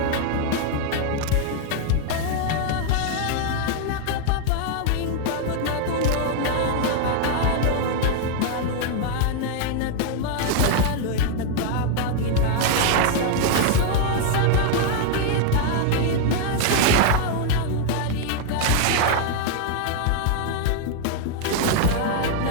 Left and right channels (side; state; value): both; different; correlation 0.00